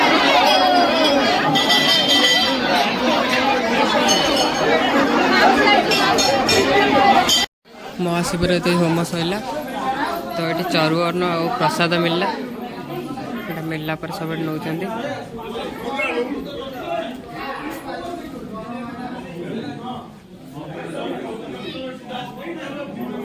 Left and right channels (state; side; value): identical; both; correlation 1.00